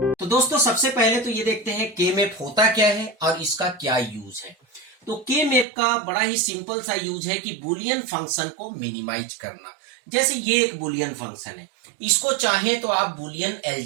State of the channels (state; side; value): drops out; left; at 5.7 s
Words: तो दोस्तों, सबसे पहले तो ये देखते हैं के मैप होता क्या है और इसका क्या यूज है। तो के मैप का बड़ा ही सिंपल सा यूज है कि बुलियन फंक्शन को मिनिमाइज करना। जैसे ये एक बुलियन फंक्शन है, इसको चाहे तो आप बुलियन